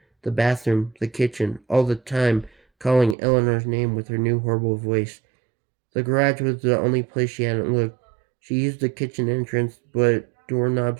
the bathroom, the kitchen, all the time calling Eleanor's name with her new horrible voice. The garage was the only place she hadn't looked. She used the kitchen entrance, but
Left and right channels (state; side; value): drops out; left; at 3.2 s